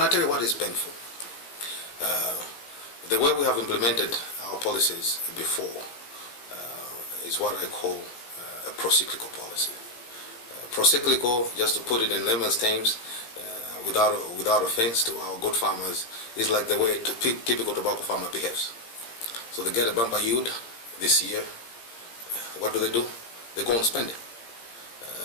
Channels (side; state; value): right; late; 17 ms